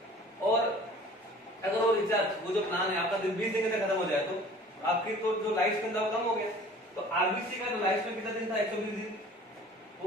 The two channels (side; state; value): both; normal; correlation 0.47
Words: और अगर वो रिचार्ज, वो जो प्लान है आपका 20 दिन तक खत्म हो जाए, तो आपकी तो जो लाइफ स्पैन था कम हो गया। तो आरबीसी का जो लाइफ स्पैन कितना दिन था, 120 दिन,